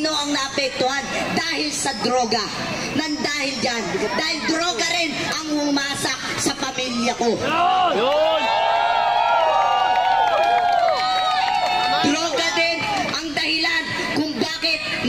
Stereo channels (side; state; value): right; noise; rumble, 21 dB below the sound